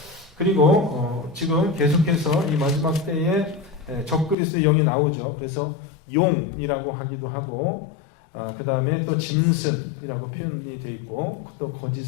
그리고 지금 계속해서 이 마지막 때에 적그리스도의 영이 나오죠. 그래서 용이라고 하기도 하고 그 다음에 또 짐승이라고 표현이 되어 있고 또 거짓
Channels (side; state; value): right; drops out; at 4.4 s